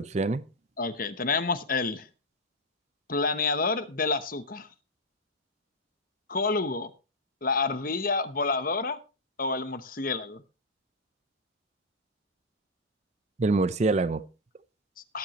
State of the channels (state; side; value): normal; both; correlation -0.02